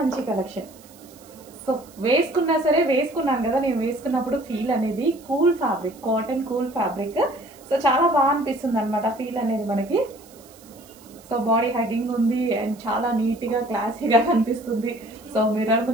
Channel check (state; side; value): noise; right; hiss, 24 dB below the sound